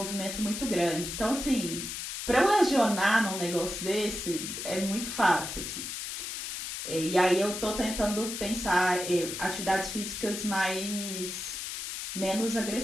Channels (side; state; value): left; noise; hiss, 6 dB below the sound